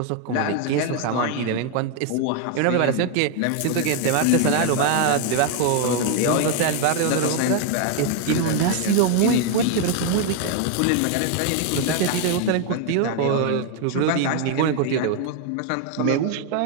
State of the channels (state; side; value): different; both; correlation 0.01